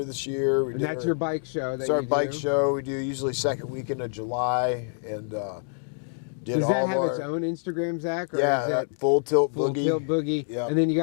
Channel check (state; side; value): silent; right; 61 dB below the other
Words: this year. And that's your bike show. It's our bike show. We do usually second weekend of July, and does that have its own Instagram, Zach? Or is it Full Tilt Boogie? Full Tilt Boogie. Yep. And then you